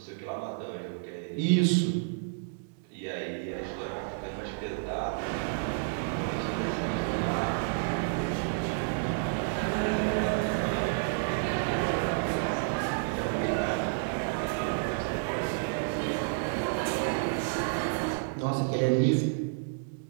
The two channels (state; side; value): silent; left; digital silence